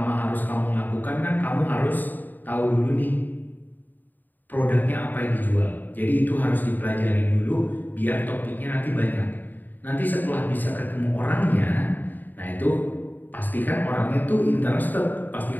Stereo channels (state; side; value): late; right; 0.088 ms